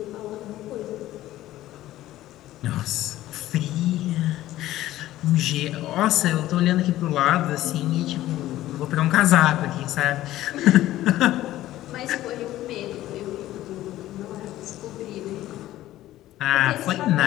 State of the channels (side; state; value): right; quieter; 14.8 dB